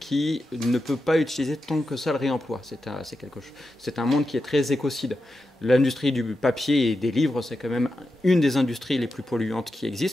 ne peut pas utiliser tant que ça le réemploi. C'est un monde qui est très écocide. L'industrie du papier et des livres, c'est quand même une des industries les plus polluantes qui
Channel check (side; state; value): both; normal; correlation 0.89